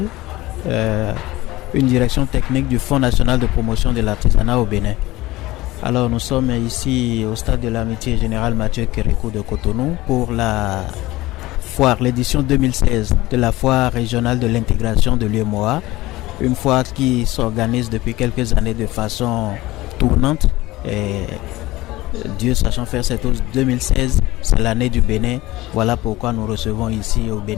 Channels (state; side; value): quieter; right; 18.5 dB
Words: une direction technique du Fonds national de promotion de l'artisanat au Bénin. Alors nous sommes ici au stade de l'amitié générale Mathieu Kérékou de Cotonou pour la foire, l'édition 2016 de la foire régionale de l'intégration de l'UEMOA, une foire qui s'organise depuis quelques années de façon tournante. Et Dieu sachant faire cette chose, 2016, c'est l'année du Bénin. Voilà pourquoi nous recevons ici au